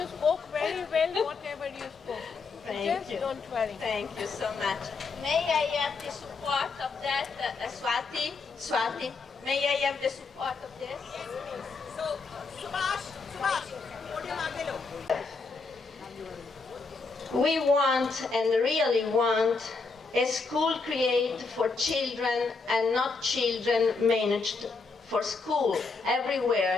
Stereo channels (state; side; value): quieter; right; 4.3 dB